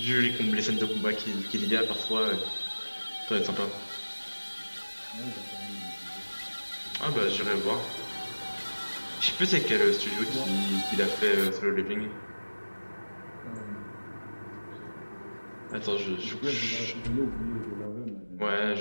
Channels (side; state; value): both; inverted; correlation -1.00